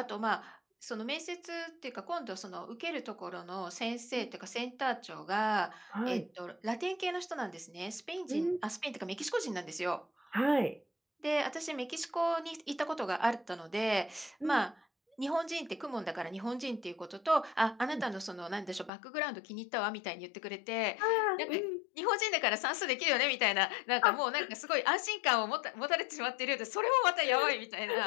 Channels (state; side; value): drops out; right; at 18.9 s